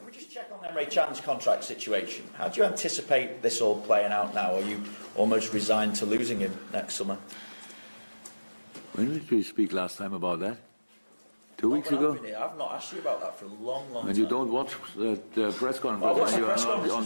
we just check on Emre Can's contract situation? How do you anticipate this all playing out now? Are you almost resigned to losing him next summer? When did we speak last time about that? 2 weeks ago? I've not asked you about that for a long time. And you don't watch the press conference when you are not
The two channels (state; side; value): inverted; both; correlation -1.00